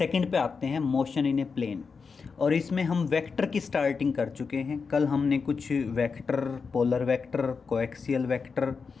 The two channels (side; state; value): right; quieter; 5.2 dB